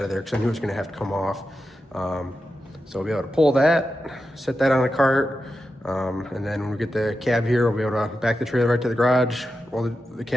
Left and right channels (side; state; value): both; normal; correlation 0.90